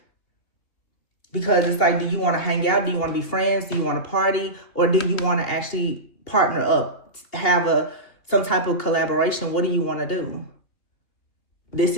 Because it's like, do you want to hang out? Do you want to be friends? Do you want to party? Or do you want to actually partner up, have some type of collaboration? What do you want to do? This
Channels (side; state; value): right; late; 2.8 ms